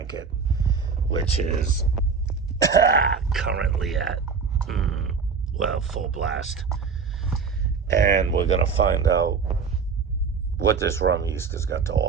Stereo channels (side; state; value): left; quieter; 5.5 dB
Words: which is currently at, full blast. And we're going to find out what this rum yeast has got to